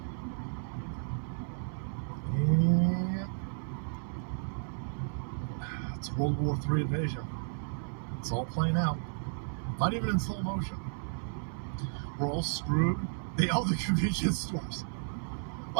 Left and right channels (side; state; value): left; silent; 56 dB below the other